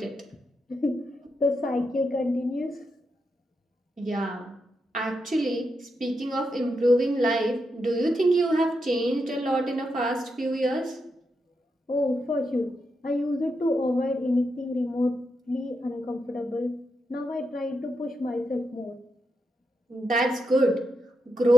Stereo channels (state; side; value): normal; both; correlation 0.84